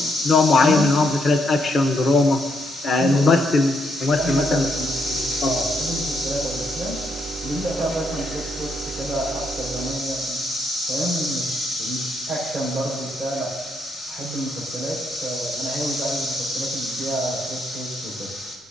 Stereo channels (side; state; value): both; normal; correlation 0.76